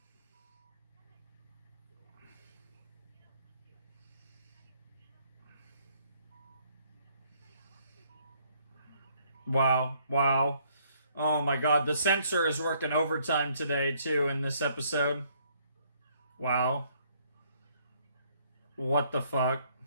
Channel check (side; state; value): both; inverted; correlation -0.67